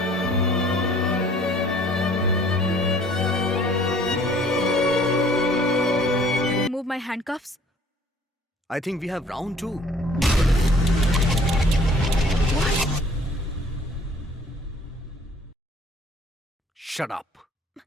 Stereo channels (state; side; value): normal; both; correlation 0.55